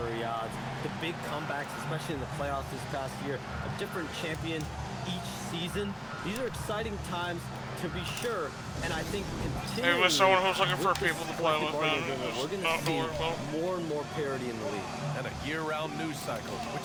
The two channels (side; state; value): both; identical; correlation 1.00